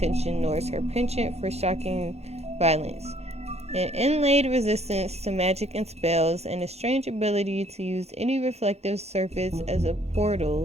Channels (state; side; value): late; left; 0.31 ms